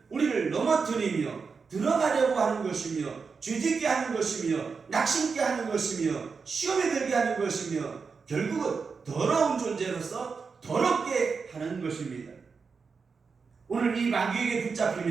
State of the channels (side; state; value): left; quieter; 5.2 dB